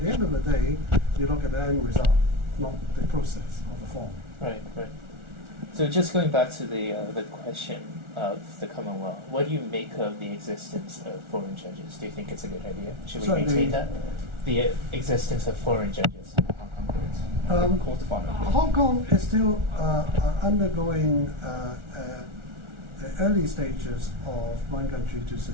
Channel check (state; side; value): late; left; 1.4 ms